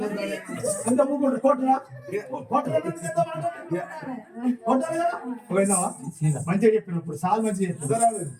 మాట్లాడా మంచిగా చెప్పినప్పుడు సార్ మంచిగా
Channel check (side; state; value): both; identical; correlation 1.00